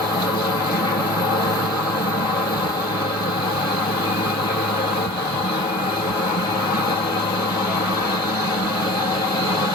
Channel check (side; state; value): both; normal; correlation 0.41